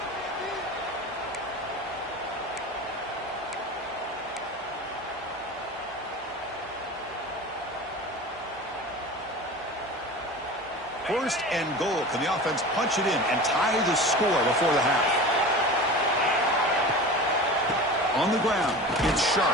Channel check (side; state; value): both; normal; correlation 0.34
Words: First and goal. Can the offense punch it in and tie the score before the half? On the ground, it's Sharp.